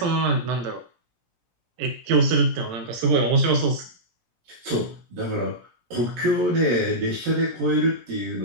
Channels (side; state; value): left; late; 17 ms